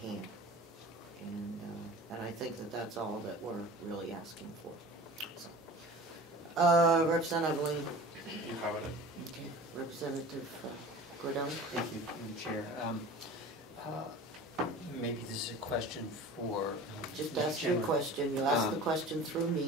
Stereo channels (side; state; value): both; normal; correlation 0.39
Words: And I think that that's all that we're really asking for. So, Representative Lane. You covered it. Okay. Representative Gordon. Thank you, Madam Chair. Maybe this is a question for... Just ask your question. You ask the question through